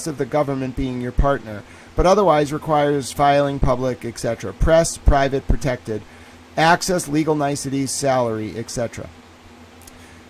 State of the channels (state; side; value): identical; both; correlation 1.00